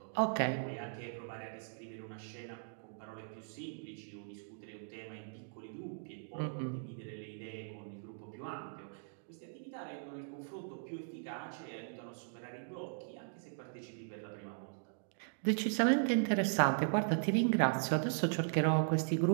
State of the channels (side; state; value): left; silent; digital silence